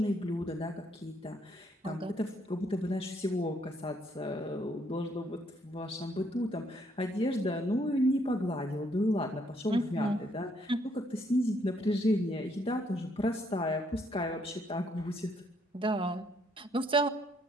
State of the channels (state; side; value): normal; both; correlation 0.70